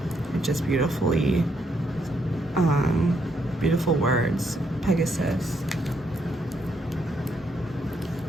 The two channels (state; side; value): normal; both; correlation 0.75